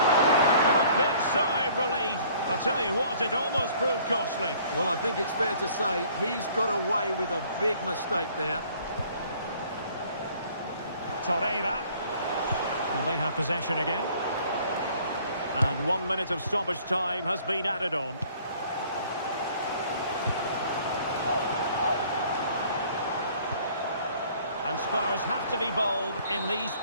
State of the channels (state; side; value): inverted; both; correlation -0.56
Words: And a big sigh of relief. I'll tell you what, it almost proved costly. Well, I think it's fair to say he's got away with a big mistake there. Torreira. And they have possession again. And 1 minute of stoppage time has been added on. And Spurs have to be bold in these